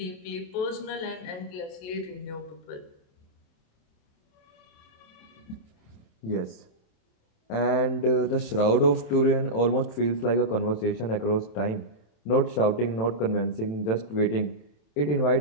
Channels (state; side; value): late; right; 27 ms